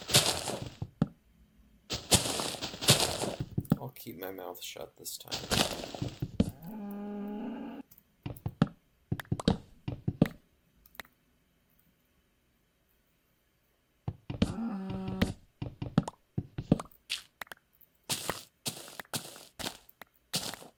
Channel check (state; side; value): identical; both; correlation 1.00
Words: I'll keep my mouth shut this time.